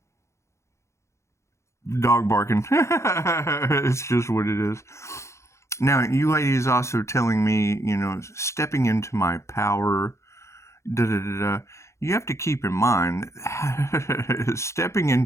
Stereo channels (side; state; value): right; late; 0.14 ms